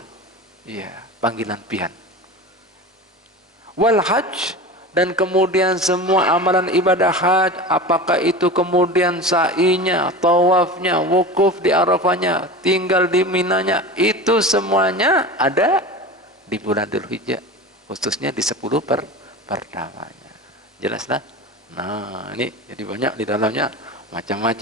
Iya, panggilan pian. Wal hajj, dan kemudian semua amalan ibadah haji, apakah itu kemudian sa'inya, tawafnya, wukuf di Arafahnya, tinggal di Minanya, itu semuanya ada di bulan Dzulhijjah, khususnya di 10 pertamanya. Jelaslah? Nah, ini jadi banyak di dalamnya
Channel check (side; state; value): both; normal; correlation 0.30